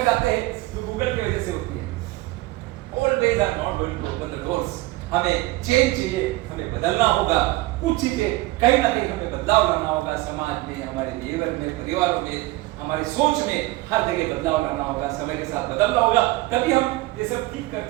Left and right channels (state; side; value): quieter; left; 19.8 dB